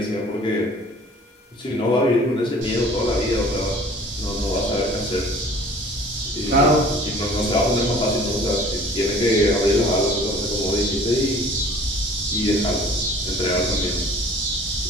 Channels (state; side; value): normal; both; correlation 0.49